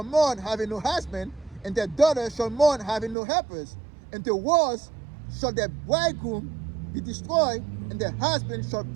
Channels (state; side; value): drops out; left; at 3.2 s